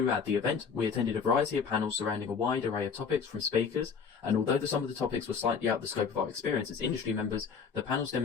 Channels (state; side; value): quieter; right; 6.0 dB